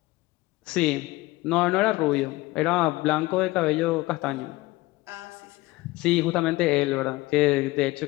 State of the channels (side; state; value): right; quieter; 20.1 dB